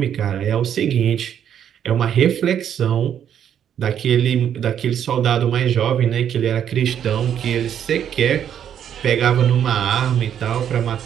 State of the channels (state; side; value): quieter; left; 9.3 dB